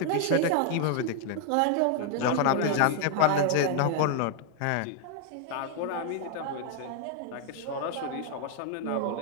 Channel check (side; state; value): both; different; correlation 0.00